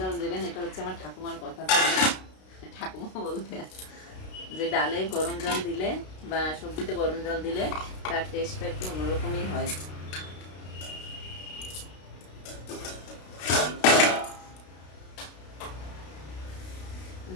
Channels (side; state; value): right; late; 32 ms